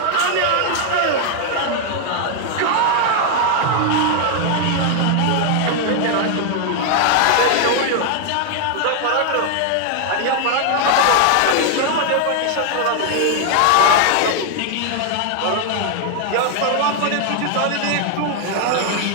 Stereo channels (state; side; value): different; both; correlation 0.00